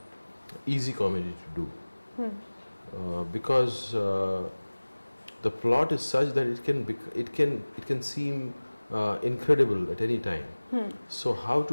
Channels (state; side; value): inverted; both; correlation -1.00